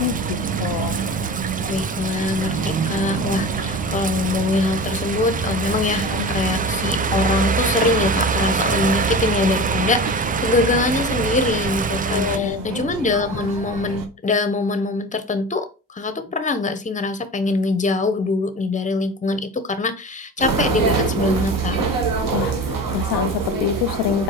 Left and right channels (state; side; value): normal; both; correlation 0.33